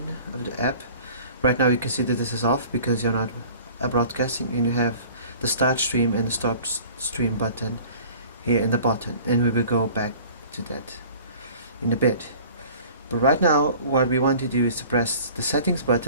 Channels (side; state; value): both; inverted; correlation -0.47